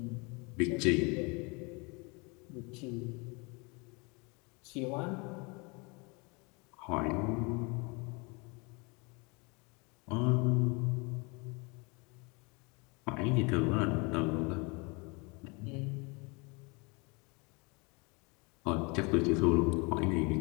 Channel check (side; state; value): right; quieter; 29.5 dB